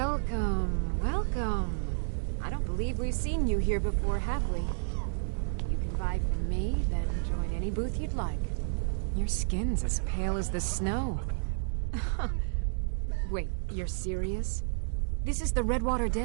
welcome. I don't believe we've seen you here before, have we? You can buy from me, then join any booth you'd like. Your skin's as pale as the snow. Wait, you're serious? This is the Redwater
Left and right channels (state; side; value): silent; left; digital silence